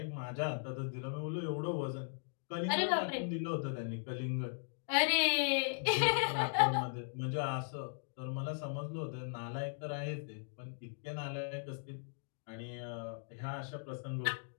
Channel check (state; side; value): silent; right; digital silence